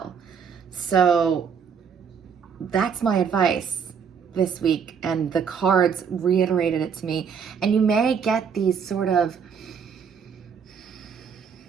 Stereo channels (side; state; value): left; quieter; 6.7 dB